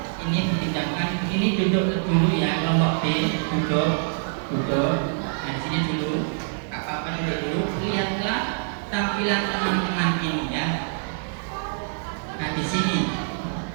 Ini dipinjamkan. Ini duduk dulu ya, kelompok B duduk. Nah di sini dulu, apa-apa dulu. Lihatlah tampilan teman-teman ini ya. Nah di sini,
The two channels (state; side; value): silent; left; 62 dB below the other